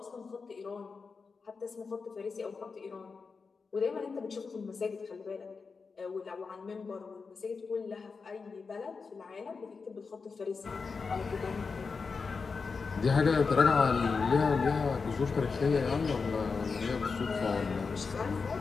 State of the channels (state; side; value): quieter; right; 4.8 dB